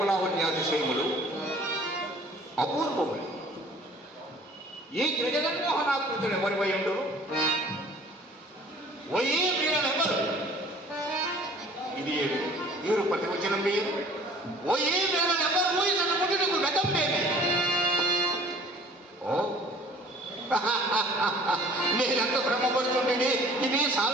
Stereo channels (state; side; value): normal; both; correlation 0.51